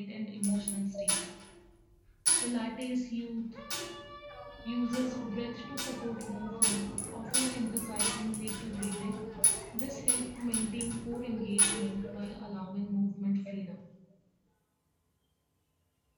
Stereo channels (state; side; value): identical; both; correlation 1.00